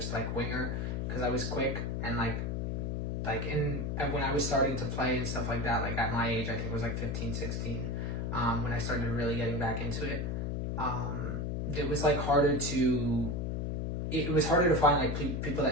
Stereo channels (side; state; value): left; noise; hum, 1 dB below the sound